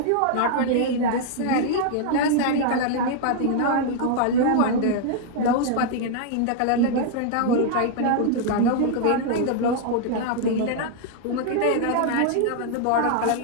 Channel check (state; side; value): different; both; correlation -0.01